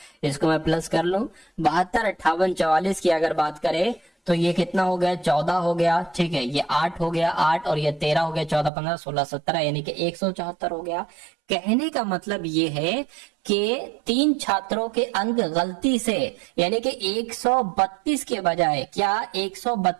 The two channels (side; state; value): left; drops out; at 8.7 s